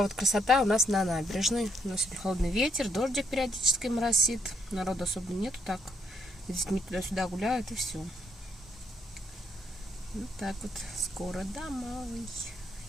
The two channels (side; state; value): both; normal; correlation 0.73